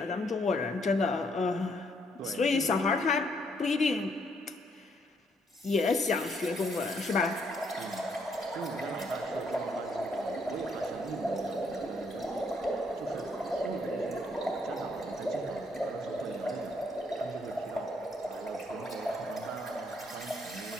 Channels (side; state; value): both; normal; correlation 0.71